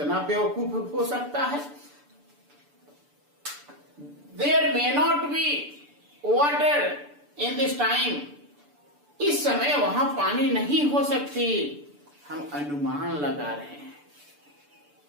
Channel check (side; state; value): left; late; 6.9 ms